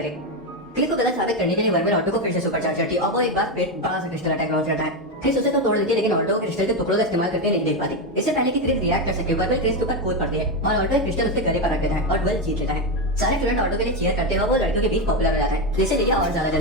क्रिस को गलत साबित करने के लिए वर्मिल ऑल्टो को फिर से सुपर चार्ज करती है और वो एक बार फिर बड़ा सा क्रिस्टल अटैक लॉन्च करता है। क्रिस उसे तो तोड़ देती है लेकिन ऑल्टो क्रिस्टल के टुकड़ों का इस्तेमाल करके नहीं देख पाती। इससे पहले कि क्रिस रिएक्ट कर सके वर्मिल क्रिस के ऊपर कूद पड़ती है और ऑल्टो एक क्रिस्टल उसके गले पर रख देता है और डुएल जीत लेता है। सारे स्टूडेंट ऑल्टो के लिए चीयर करते हुए वो लड़कियों के बीच पॉपुलर हो जाता है जिससे लिलिया और ज्यादा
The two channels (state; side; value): normal; both; correlation 0.10